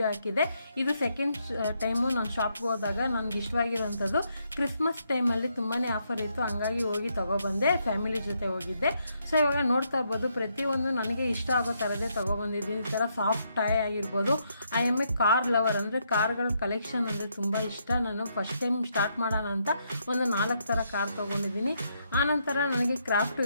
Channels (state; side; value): inverted; both; correlation -0.76